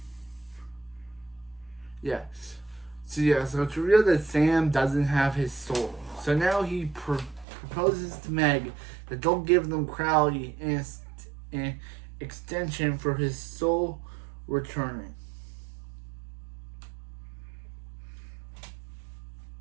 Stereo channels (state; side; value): drops out; left; at 7.5 s